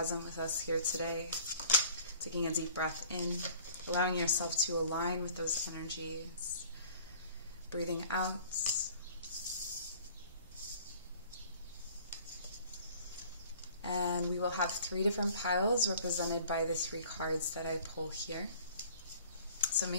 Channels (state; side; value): inverted; both; correlation -0.51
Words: with us here today. Taking a deep breath in, allowing yourself to align with those energies. Breathing out. And we will have 3 different piles represented by the 3 cards that I pull here. So